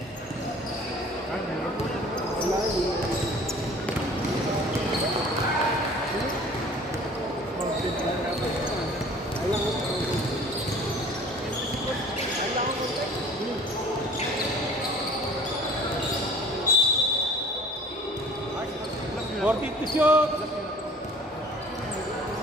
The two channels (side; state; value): both; normal; correlation 0.48